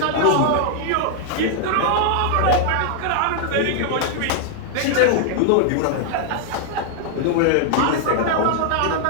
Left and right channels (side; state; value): both; different; correlation -0.01